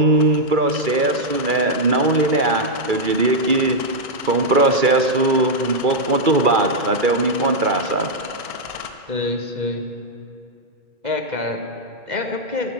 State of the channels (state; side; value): late; left; 2.3 ms